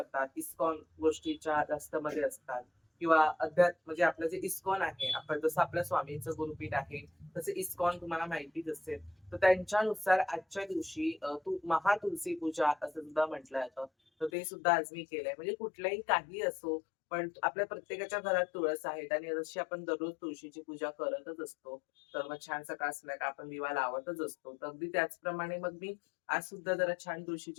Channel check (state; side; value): drops out; right; at 14.3 s